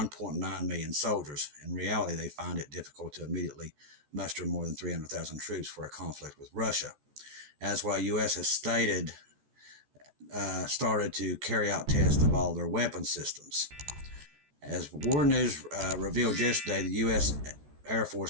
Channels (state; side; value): late; left; 14 ms